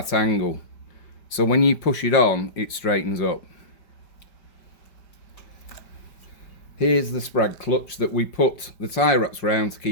angle. So when you push it on, it straightens up. Here's the sprag clutch that we put the tie wraps round to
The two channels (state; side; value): late; right; 5.1 ms